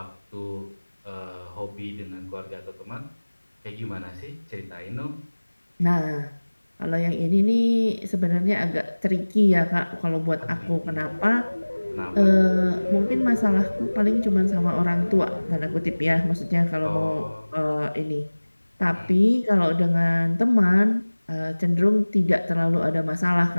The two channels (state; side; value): inverted; both; correlation -1.00